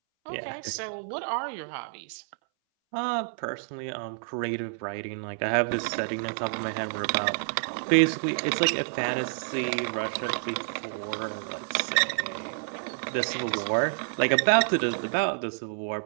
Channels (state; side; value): silent; left; 59 dB below the other